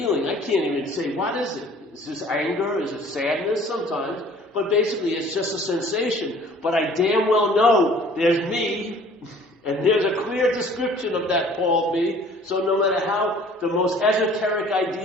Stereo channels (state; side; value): normal; both; correlation 0.52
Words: I can't even say, what is it? Is this anger? Is it sadness? Sometimes. But basically it's just a sensation. But I damn well know there's me, and there's a clear description of that called me. So no matter how the most esoteric